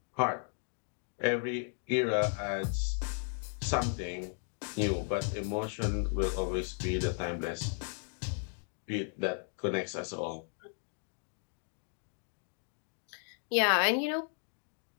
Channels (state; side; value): silent; right; 54 dB below the other